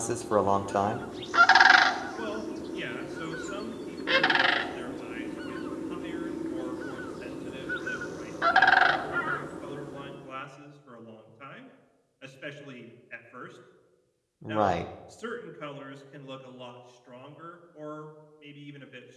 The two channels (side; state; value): both; identical; correlation 1.00